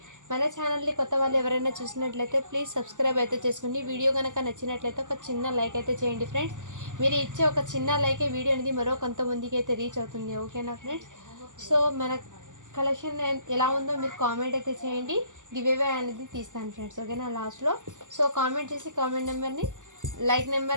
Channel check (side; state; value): left; late; 0.87 ms